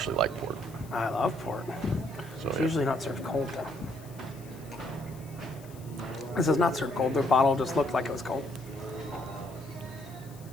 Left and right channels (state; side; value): noise; left; hiss, 22 dB below the sound